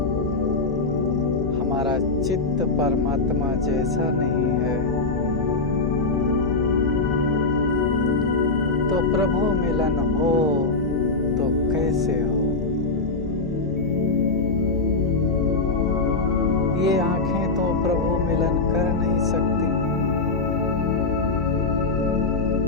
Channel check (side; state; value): right; quieter; 3.6 dB